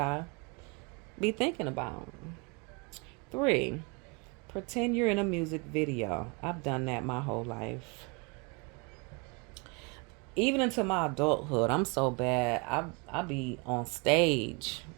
be thinking about. 3, pretend you're in a music video. I've done that my whole life. Even into my adulthood, I'm so bad. I be on stage.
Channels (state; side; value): quieter; left; 30.0 dB